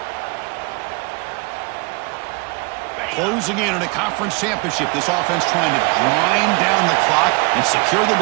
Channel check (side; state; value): left; quieter; 28.1 dB